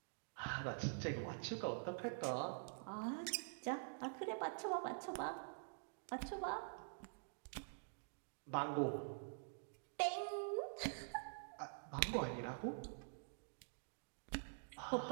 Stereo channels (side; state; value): left; silent; digital silence